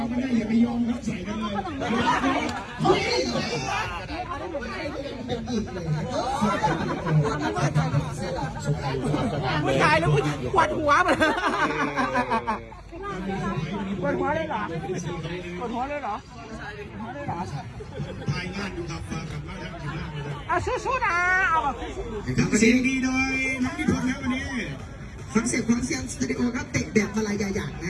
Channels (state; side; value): identical; both; correlation 1.00